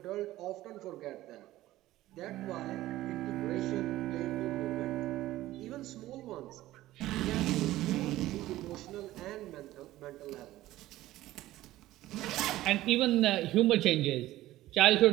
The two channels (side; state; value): left; quieter; 15.8 dB